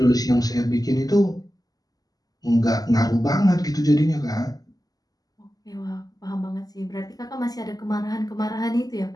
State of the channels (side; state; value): right; late; 0.18 ms